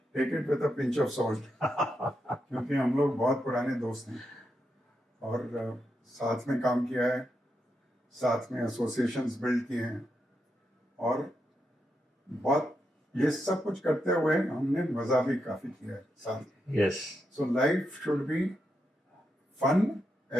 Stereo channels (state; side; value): normal; both; correlation 0.84